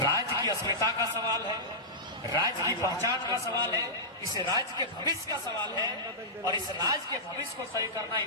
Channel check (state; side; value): normal; both; correlation -0.14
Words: की अस्मिता का सवाल है, राज्य की पहचान का सवाल है, इस राज्य के भविष्य का सवाल है, और इस राज्य के भविष्य को तय करना